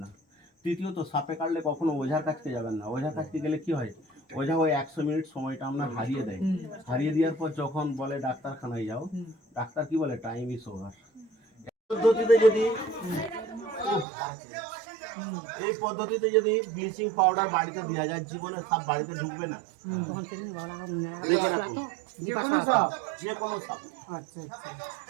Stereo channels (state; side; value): drops out; left; at 14.1 s